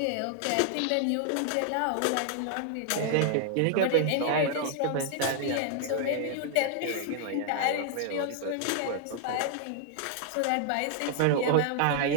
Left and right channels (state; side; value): different; both; correlation 0.00